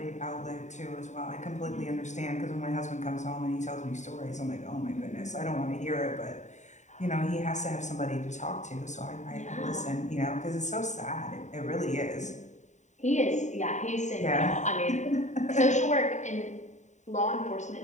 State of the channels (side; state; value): right; late; 0.34 ms